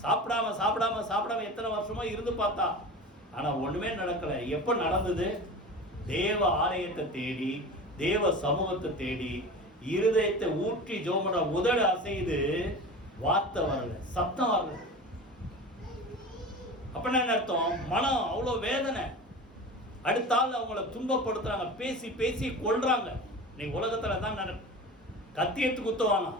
சாப்பிடாம சாப்பிடாம சாப்பிடாம எத்தனை வருஷமா இருந்து பார்த்தா, ஆனா ஒண்ணுமே நடக்கல. எப்ப நடந்தது? தேவ ஆலயத்தை தேடி, தேவ சமூகத்தை தேடி, இருதயத்தை ஊற்றி ஜெபம் பண்ண, உதடு அசைது, வார்த்தை வரல, சத்தம் வரல. அப்படின்னா என்ன அர்த்தம்? மனம் அவ்வளவு வேதனை. அடுத்த ஆள் அவங்கள துன்பப்படுத்துறாங்க, பேசி பேசி கொள்றாங்க. இன்னைக்கு உலகத்துல தான் கத்தி எடுத்து குத்துவாங்க,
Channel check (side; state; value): both; normal; correlation 0.33